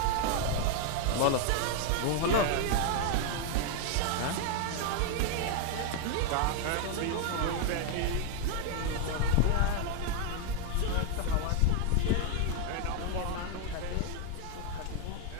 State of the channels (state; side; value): different; both; correlation 0.00